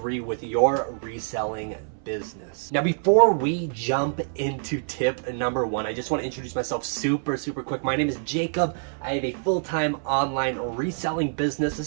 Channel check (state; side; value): silent; left; 61 dB below the other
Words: with your reselling business. Now, before we jump into tip number 1, I just want to introduce myself super quick. My name is Jacob. I have a full-time online reselling business.